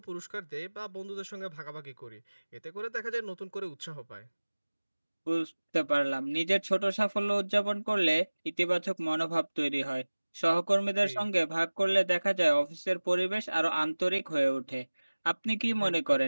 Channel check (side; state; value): both; inverted; correlation -1.00